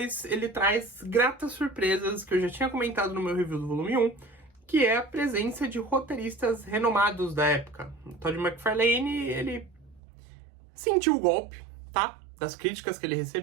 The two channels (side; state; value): left; drops out; at 10.0 s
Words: ele traz gratas surpresas que eu já tinha comentado no meu review do volume 1, que é a presença de roteiristas renomados da época. O Todd McFarlane, ele sentiu o golpe, tá? Das críticas que ele